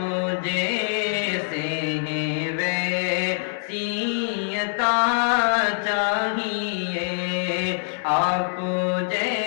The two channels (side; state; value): right; silent; digital silence